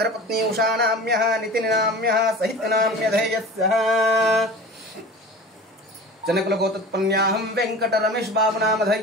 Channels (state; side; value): normal; both; correlation 0.37